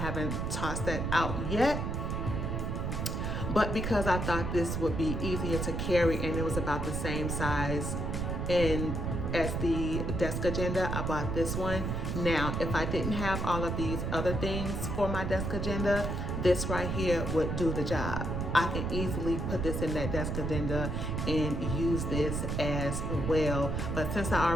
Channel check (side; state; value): right; noise; rumble, 1 dB below the sound